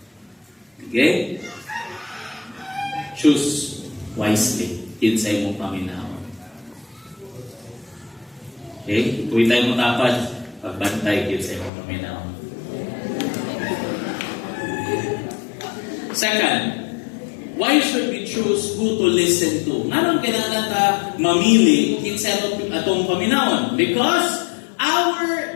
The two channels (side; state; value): right; drops out; at 11.7 s